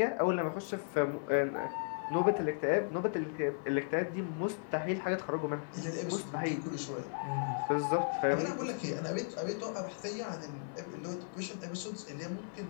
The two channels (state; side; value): silent; right; 54 dB below the other